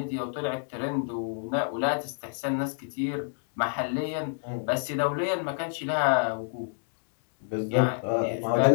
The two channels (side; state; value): right; silent; digital silence